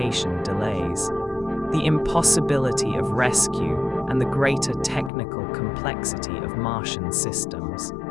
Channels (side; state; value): right; drops out; at 5.1 s